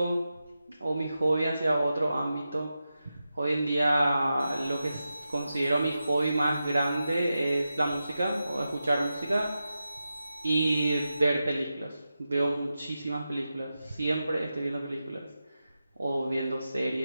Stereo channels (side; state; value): both; inverted; correlation -0.91